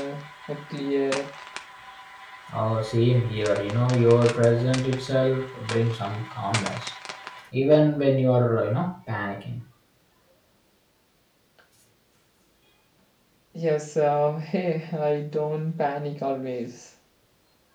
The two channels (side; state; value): both; identical; correlation 1.00